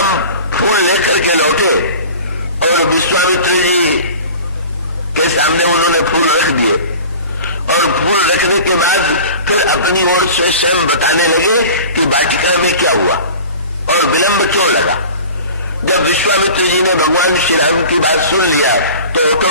फूल लेकर के लौटे और विश्वामित्र जी के सामने उन्होंने फूल रख दिए और फूल रखने के बाद फिर अपनी ओर से स्वयं बताने लगे कि वाटिका में क्या हुआ और विलंब क्यों लगा। जब विश्वामित्र जी ने भगवान श्री राम की बात सुन लिया तो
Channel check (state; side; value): inverted; both; correlation -0.39